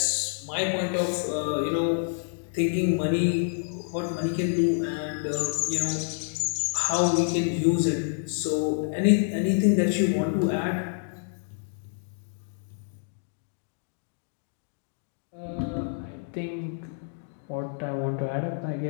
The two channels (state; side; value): silent; right; digital silence